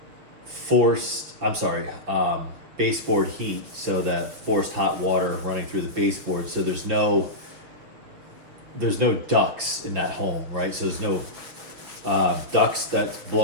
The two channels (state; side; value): late; left; 6.7 ms